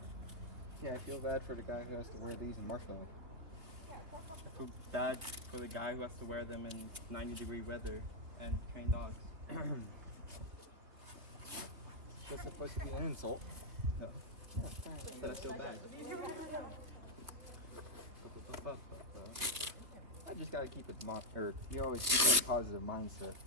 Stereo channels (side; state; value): left; late; 3.3 ms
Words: Yeah, I feel bad for the guy who has to wear these in Marshmallow. I feel bad for the guy who has to wear them in 90-degree weather and train dogs. That's supposed to be an insult. No. That I feel bad. I just gotta keep it, you always keep that positive mindset,